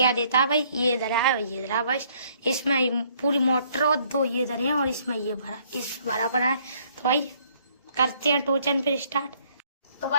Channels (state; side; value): inverted; both; correlation -0.64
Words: देता है। भाई ये इधर है ये इधर है। बस इसमें पूरी मोटर और दो ये इधर है और इसमें ये भरा इस बराबर है। तो भाई करते हैं टोचन फिर स्टार्ट। तो